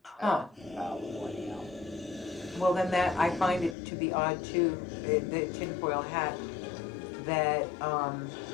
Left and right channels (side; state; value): right; drops out; at 3.8 s